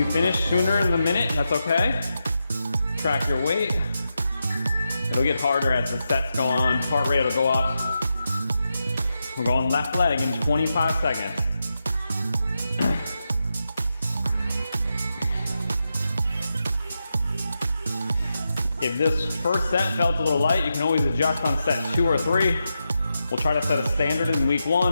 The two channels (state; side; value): inverted; both; correlation -0.87